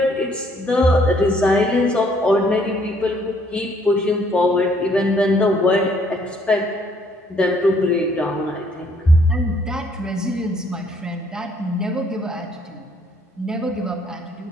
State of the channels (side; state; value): both; normal; correlation 0.65